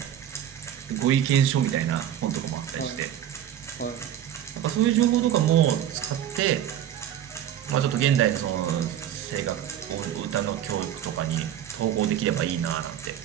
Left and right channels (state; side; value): quieter; left; 10.6 dB